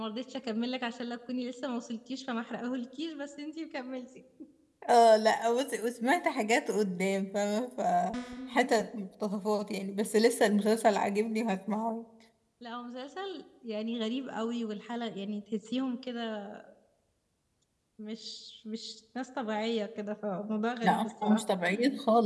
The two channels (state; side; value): identical; both; correlation 1.00